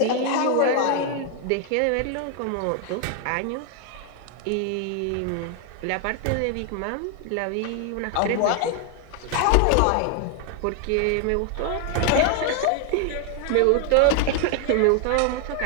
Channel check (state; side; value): different; both; correlation 0.00